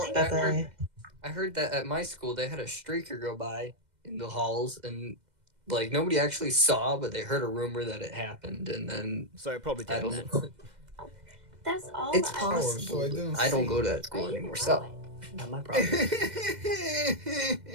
that at my school they had a streaker go by in the halls, and like nobody actually saw, but they heard a rumor that it happened, and then so it probably did. I don't know. That's all. It's I possible. I don't go to that school anymore, so not my problem.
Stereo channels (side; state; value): left; late; 2.0 ms